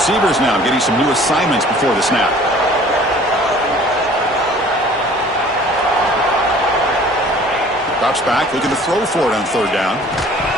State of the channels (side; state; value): both; normal; correlation 0.50